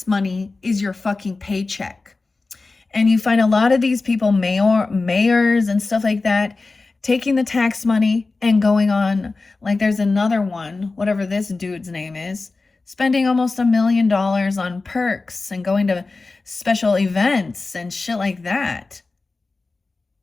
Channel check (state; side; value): quieter; right; 3.7 dB